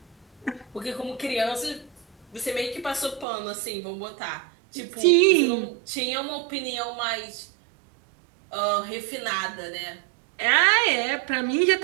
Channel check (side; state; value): left; drops out; at 3.2 s